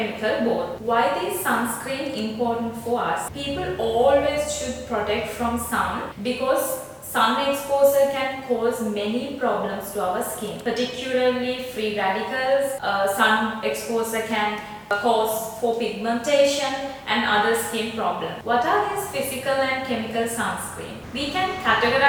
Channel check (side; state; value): both; identical; correlation 1.00